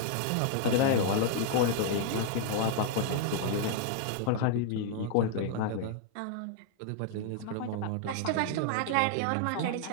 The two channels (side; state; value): both; different; correlation 0.00